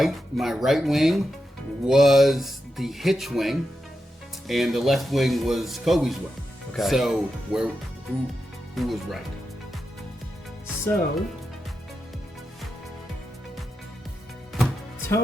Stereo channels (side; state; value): both; normal; correlation 0.88